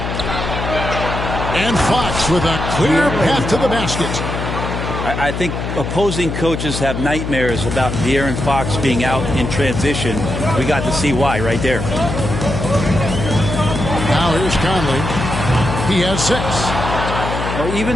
And Fox with a clear path to the basket. I think opposing coaches have nightmares about De'Aaron Fox being out in transition. We got to see why right there. Now here's Conley. He has 6. Well,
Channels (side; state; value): left; noise; hum, 4 dB below the sound